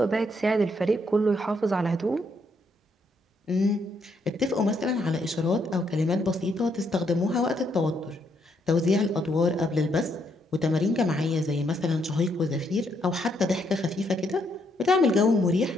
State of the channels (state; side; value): normal; both; correlation 0.74